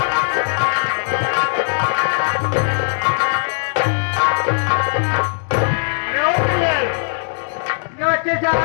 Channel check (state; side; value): silent; right; digital silence